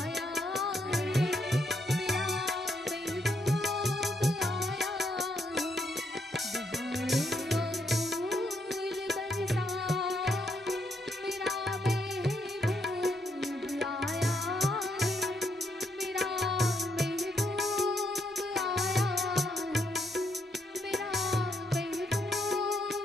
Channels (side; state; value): both; normal; correlation 0.76